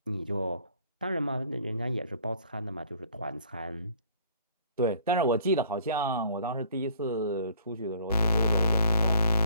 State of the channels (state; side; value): inverted; both; correlation -0.56